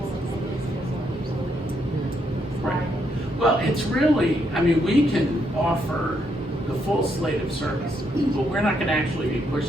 and they just feel so absolutely Right. Well, it's really, we can offer the full slate of services, but we're not going to actually be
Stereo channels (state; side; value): normal; both; correlation 0.76